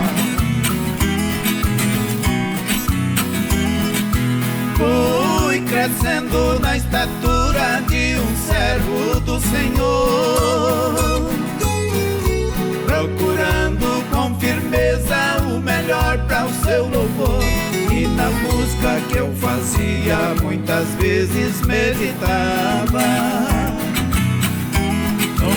Fui crescendo na estatura de um servo do Senhor, procurando com firmeza o melhor para o seu louvor. E na música que eu fazia muitas vezes meditava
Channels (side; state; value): both; identical; correlation 1.00